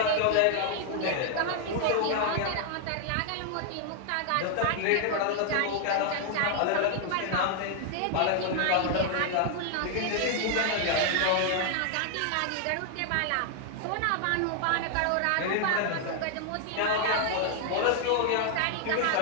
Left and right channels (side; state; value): both; different; correlation 0.00